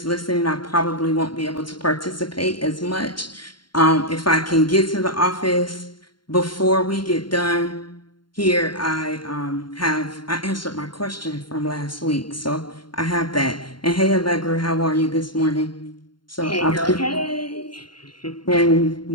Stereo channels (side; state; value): right; late; 0.72 ms